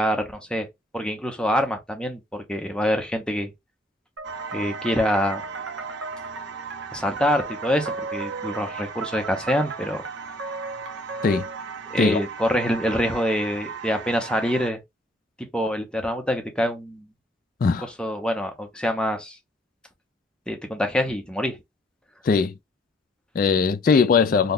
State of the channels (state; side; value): normal; both; correlation 0.62